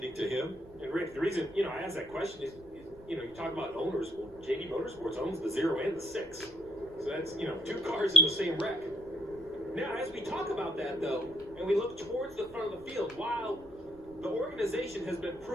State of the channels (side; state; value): right; noise; rumble, 22 dB below the sound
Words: to him. And Rick, the reason, you know, I asked that question is, you know, you talk about owners. Well, JD Motorsports owns the 0 and the 6. So that's, you know, 2 cars in the same wreck. Now, as we talk about that, though, and we look towards the front of the field, while the organization has been